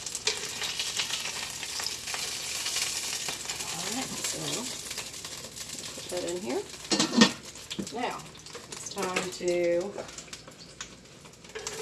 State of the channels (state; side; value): identical; both; correlation 1.00